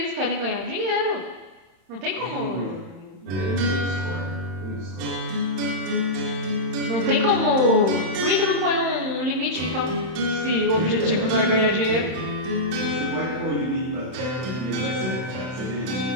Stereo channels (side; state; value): left; late; 31 ms